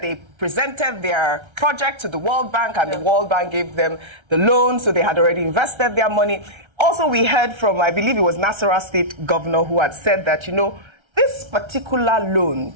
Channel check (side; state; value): left; late; 1.3 ms